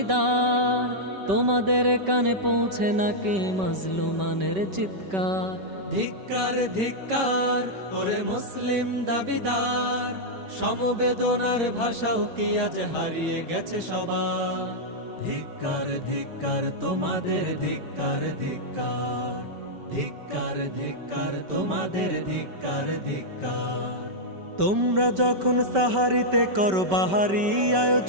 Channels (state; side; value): late; left; 5.2 ms